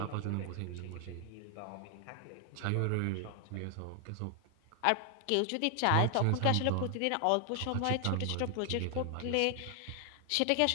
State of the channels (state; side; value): different; both; correlation 0.00